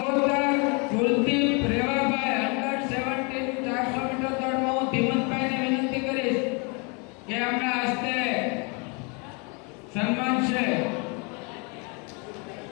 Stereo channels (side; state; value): right; quieter; 33.1 dB